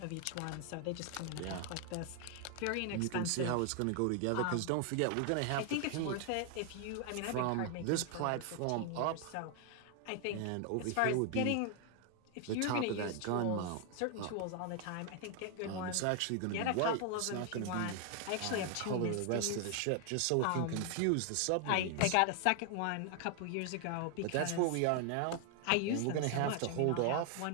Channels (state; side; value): different; both; correlation 0.00